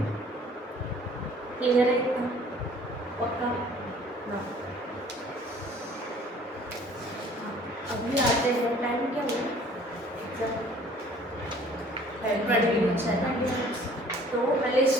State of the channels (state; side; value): normal; both; correlation 0.53